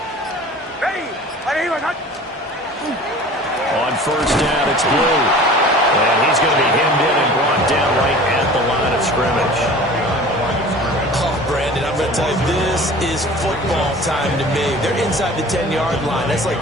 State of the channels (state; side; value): normal; both; correlation 0.43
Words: On 1st down, it's Blue. And he's going to be hemmed in and brought down right at the line of scrimmage. Oh, Brandon, I'm going to tell you, this is football time to me. They're inside the 10-yard line. That's like